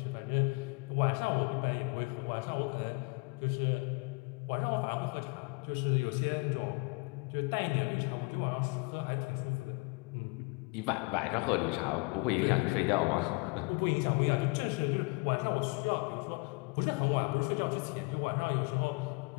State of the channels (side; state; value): right; quieter; 30.7 dB